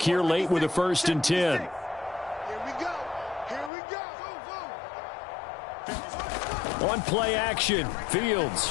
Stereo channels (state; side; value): drops out; right; at 3.7 s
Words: here late with a 1st and 10. Here we go. Here we go. On play action,